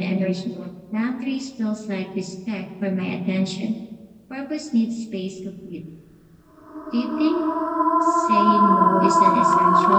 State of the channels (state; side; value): identical; both; correlation 1.00